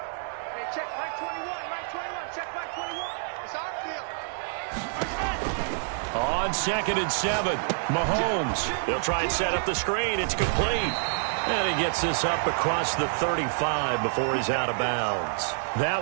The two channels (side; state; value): left; silent; digital silence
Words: On 2nd and 7, Mahomes. He'll try and set up the screen. It's complete. And he gets this up across the 35 before he's out of bounds.